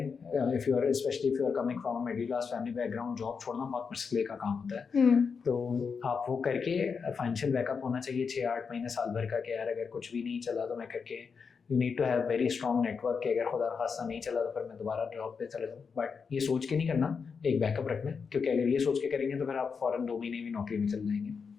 If you are specially if you are coming from middle class family background, job छोड़ना बहुत मुश्किल का काम होता है। तो आप वो करके फाइनेंशियल बैकअप होना चाहिए 6-8 महीने साल भर का, कि यार अगर कुछ भी नहीं चला तो मैं करके, you need to have very strong network कि अगर खुदा खास्ता नहीं चला तो फिर मैं दोबारा जॉब पे चले जाऊँ। बट ये सोच के नहीं करना, एक बैकअप रखना, क्योंकि अगर ये सोच के करेंगे तो फिर आप फ़ौरन 2 महीने भी नौकरी में चल जाएंगे।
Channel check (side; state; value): right; quieter; 5.7 dB